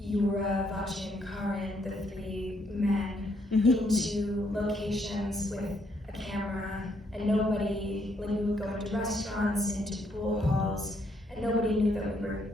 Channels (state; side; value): normal; both; correlation 0.72